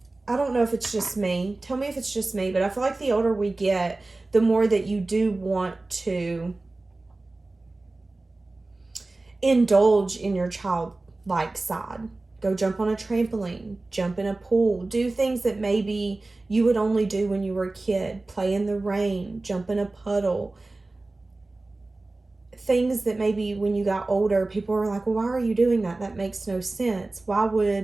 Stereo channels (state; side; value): quieter; left; 3.1 dB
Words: I don't know if it's just me. Tell me if it's just me, but I feel like the older we get, the more that you do want to indulge in your childlike side. Go jump on a trampoline, jump in a pool, do things that maybe you would only do when you were a kid. Play in the rain, jump in a puddle. Things that maybe when you got older, people were like, well, why are you doing that? That makes no sense. Why